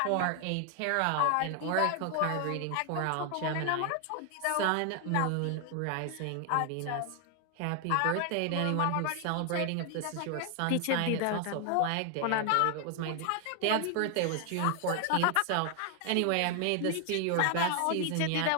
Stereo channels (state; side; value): different; both; correlation 0.00